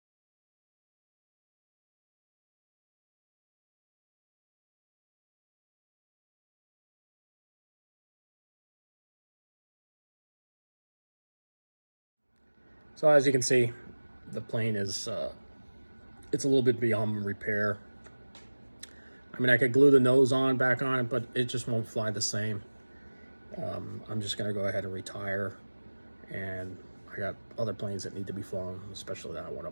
So as you can see, the plane is, it's a little bit beyond repair. I mean, I could glue the nose back on it, but it just won't fly the same. I'm just gonna go ahead and retire, and I got other planes that need to be flown, especially that one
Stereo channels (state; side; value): inverted; both; correlation -1.00